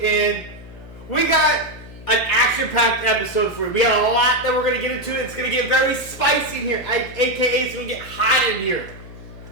in. We got an action-packed episode for you. We got a lot that we're going to get into. It's going to get very spicy in here. AKA, it's going to get hot in here.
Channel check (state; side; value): noise; left; hum, 17 dB below the sound